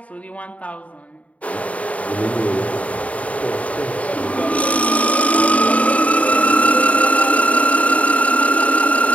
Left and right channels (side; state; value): right; late; 0.067 ms